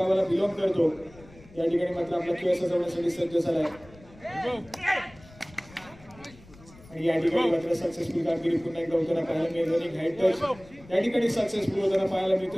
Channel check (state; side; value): noise; left; rumble, 23 dB below the sound